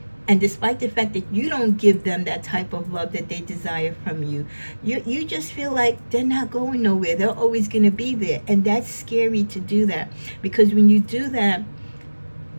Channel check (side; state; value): both; inverted; correlation -1.00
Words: and despite the fact that you don't give them that type of love that they desire from you, you just feel like they're not going nowhere. They're always going to be there. And that's scary to do that, because when you do that,